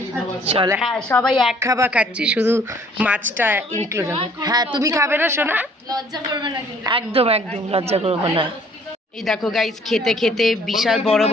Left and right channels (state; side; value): normal; both; correlation 0.58